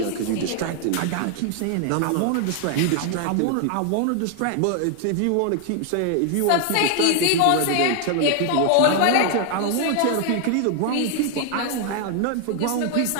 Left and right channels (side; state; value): both; different; correlation 0.00